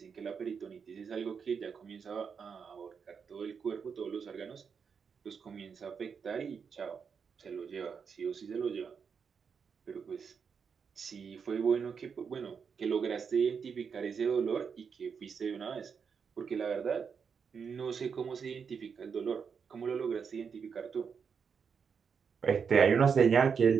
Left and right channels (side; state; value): left; quieter; 6.3 dB